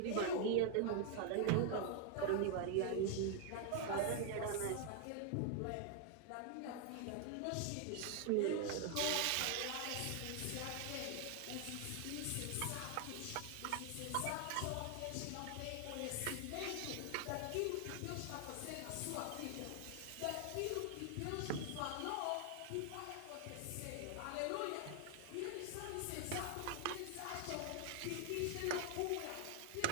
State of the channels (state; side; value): different; both; correlation 0.00